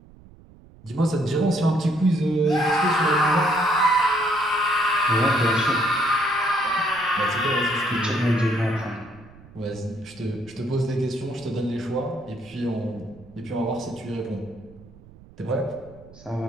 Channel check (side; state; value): right; noise; rumble, 23 dB below the sound